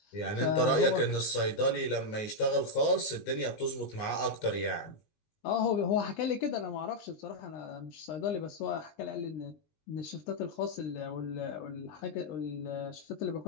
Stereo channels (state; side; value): late; right; 19 ms